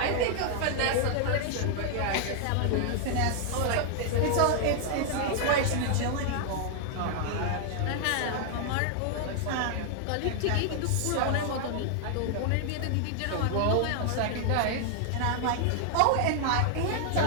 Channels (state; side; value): different; both; correlation 0.00